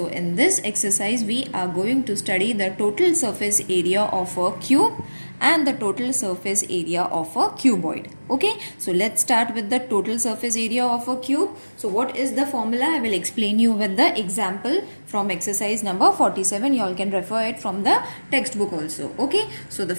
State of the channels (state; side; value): inverted; both; correlation -1.00